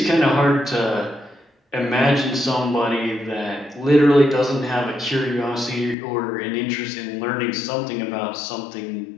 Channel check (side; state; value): right; drops out; at 6.0 s